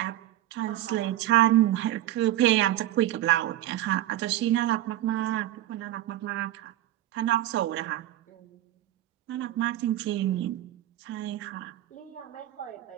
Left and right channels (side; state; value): left; quieter; 13.7 dB